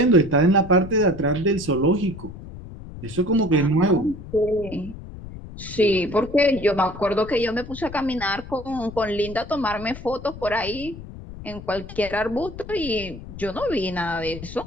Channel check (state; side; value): noise; left; rumble, 13 dB below the sound